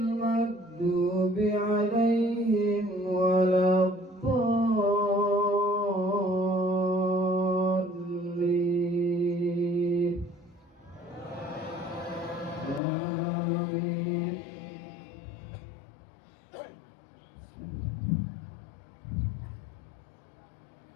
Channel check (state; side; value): drops out; right; at 12.8 s